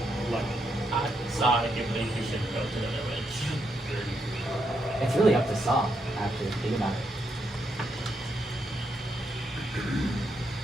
Look, I think you should go to the village. It's really up to Saw, actually. Think about it.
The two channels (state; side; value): normal; both; correlation 0.80